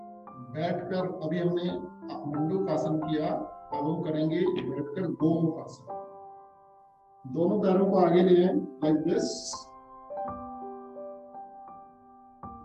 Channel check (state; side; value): identical; both; correlation 1.00